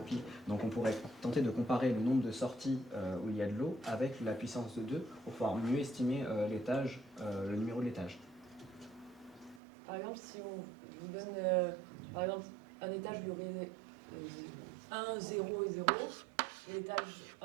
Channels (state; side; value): drops out; left; at 9.6 s